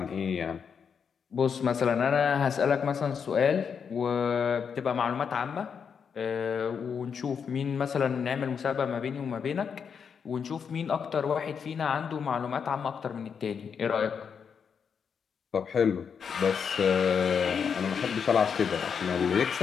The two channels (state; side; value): quieter; right; 6.7 dB